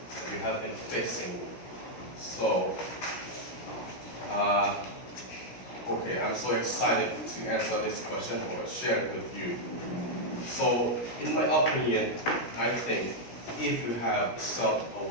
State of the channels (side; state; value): right; late; 16 ms